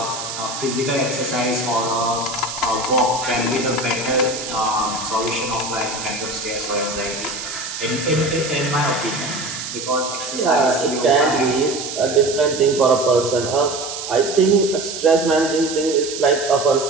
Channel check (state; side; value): noise; right; hiss, 7 dB below the sound